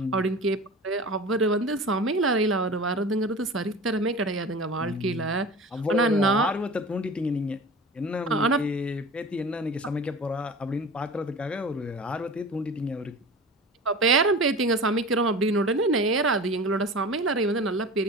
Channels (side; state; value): both; normal; correlation 0.35